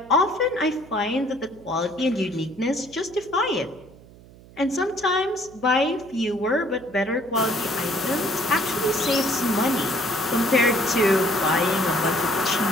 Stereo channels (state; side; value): noise; right; hum, 22 dB below the sound